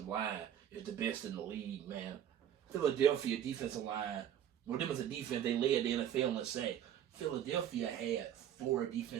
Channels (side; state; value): left; quieter; 10.2 dB